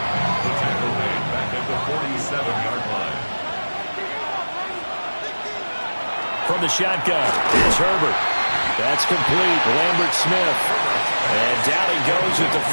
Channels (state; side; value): inverted; both; correlation -1.00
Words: The tackle made back at the 47-yard line. From the shotgun, here's Herbert. That's complete. Lambert Smith. And down he goes at the